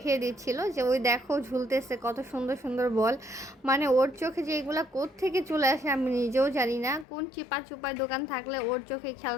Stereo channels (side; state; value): right; drops out; at 7.1 s